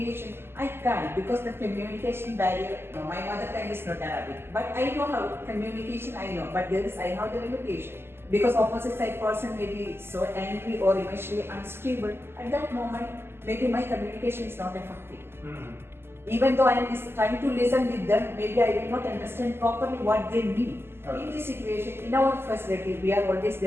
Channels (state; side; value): late; left; 0.12 ms